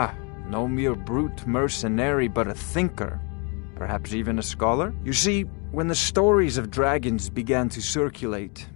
no mere brute mercenary, but a thinker. Perhaps even a scholar? You see, When the stories of dragons began to circulate,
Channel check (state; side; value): quieter; right; 34.6 dB